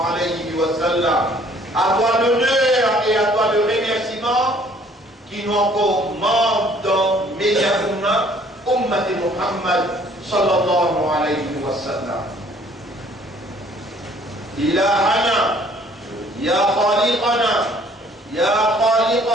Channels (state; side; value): normal; both; correlation 0.58